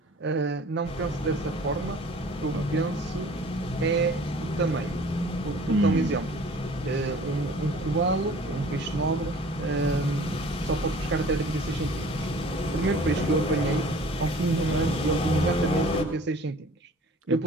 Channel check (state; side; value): normal; both; correlation 0.48